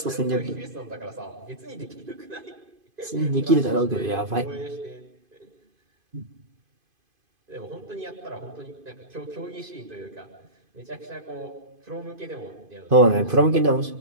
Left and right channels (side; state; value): left; late; 2.5 ms